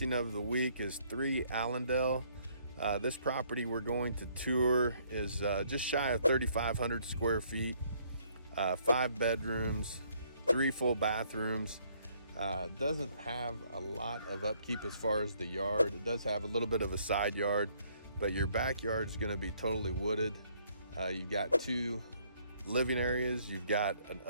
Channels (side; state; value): both; inverted; correlation -0.66